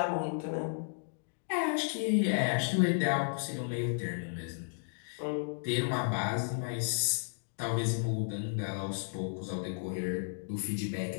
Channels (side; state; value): right; silent; digital silence